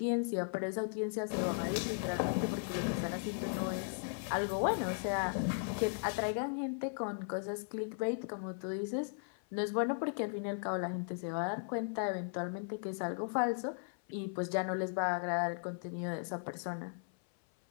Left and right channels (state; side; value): silent; right; 53 dB below the other